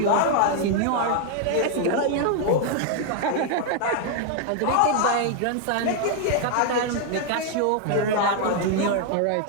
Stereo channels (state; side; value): different; both; correlation 0.00